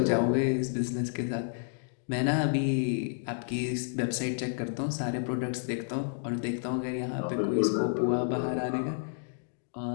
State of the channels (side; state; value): right; silent; digital silence